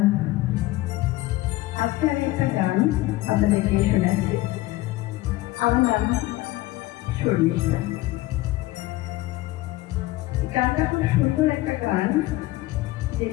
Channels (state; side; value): quieter; right; 18.0 dB